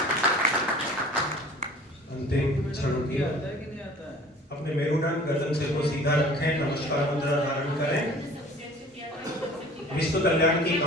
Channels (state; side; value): normal; both; correlation 0.47